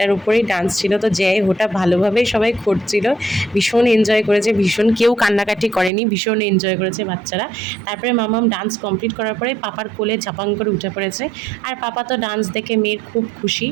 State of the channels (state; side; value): drops out; left; at 5.9 s